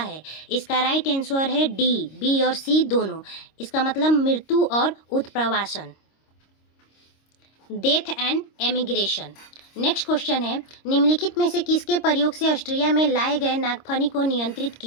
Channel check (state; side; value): late; right; 26 ms